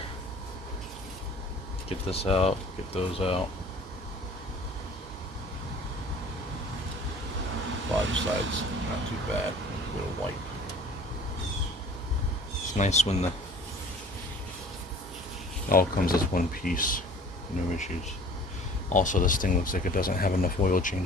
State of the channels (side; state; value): both; normal; correlation 0.47